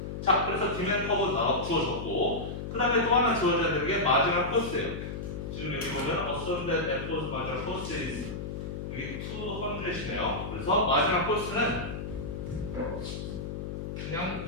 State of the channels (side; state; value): left; noise; hum, 6 dB below the sound